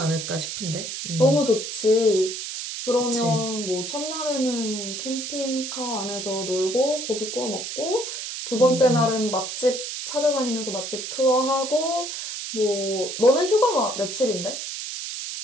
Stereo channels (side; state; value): right; noise; hiss, 6 dB below the sound